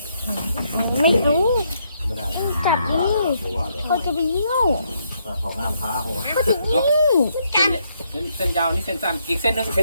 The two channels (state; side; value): inverted; both; correlation -0.75